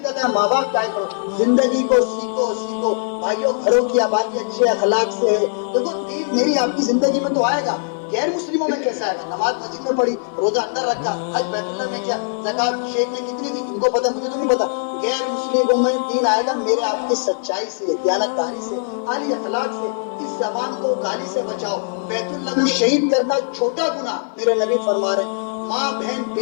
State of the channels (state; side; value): silent; right; 62 dB below the other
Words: ہے ماں باپ کے آگے کھڑو. زندگی کو سیکھو بھائیوں. گھروں کی آبادی اچھے اخلاق سے ہے. دیکھو دین میری آپ کی زندگی میں تو آئے گا, غیر مسلموں میں کیسا آئے گا؟ نماز مسجد میں پڑھی, روزہ اندر رکھا, حج بیت اللہ میں کیا, زکات شیخ نے کتنی دی ان کو پتا, مجھے تو نہیں پتا. غیر مسلموں میں دین آئے گا میرے آپ کی سچائی سے, دیانتداری سے, اعلی اخلاق سے. اس زبان کو گالی سے بچاؤ. بیت اللہ کو شہید کرنا چھوٹا گناہ میرے نبی فرما رہے ہیں. ماں بہن